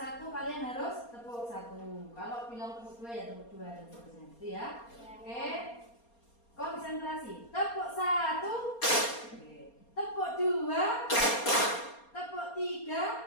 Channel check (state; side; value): late; right; 4.3 ms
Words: kalian harus tepuk 1. Kalau bilang tepuk 2 ya tepuk 2 dan seterusnya. Gitu ya. Oke. Konsentrasi. Tepuk 1. Oke. Tepuk 2. Tepuk